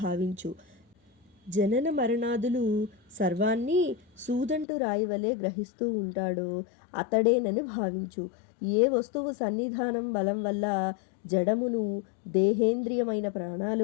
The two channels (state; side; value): drops out; right; at 4.7 s